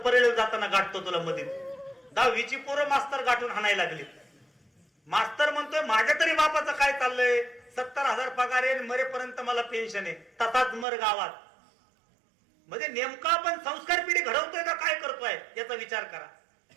परेल जाताना गाठतो तुला मध्ये. 10वीची पोरं मास्तर गाठून हाणायला लागली. मास्तर म्हणतोय माझ्या तरी बापाचं काय चाललंय, 70,000 पगार आहे, मरेपर्यंत मला पेन्शन आहे, तसाच मर गावात. म्हणजे नेमका आपण संस्कार पिढी घडवतोय का काय करतोय याचा विचार करा.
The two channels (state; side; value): drops out; left; at 10.9 s